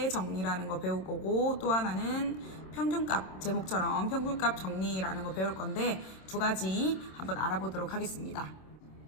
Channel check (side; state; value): right; late; 26 ms